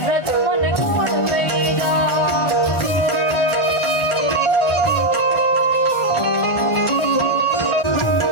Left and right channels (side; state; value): right; late; 1.4 ms